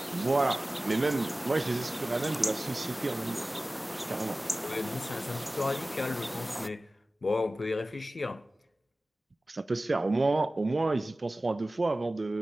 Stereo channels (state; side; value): normal; both; correlation 0.97